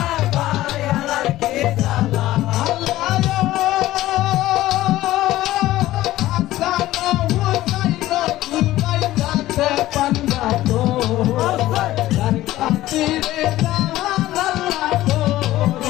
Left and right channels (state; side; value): quieter; right; 15.6 dB